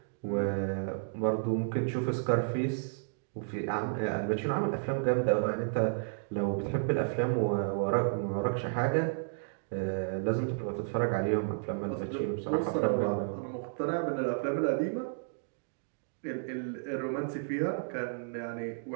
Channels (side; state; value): left; silent; digital silence